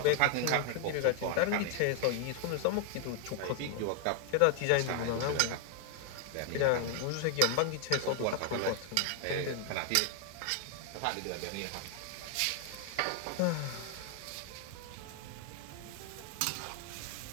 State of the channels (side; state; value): both; different; correlation 0.00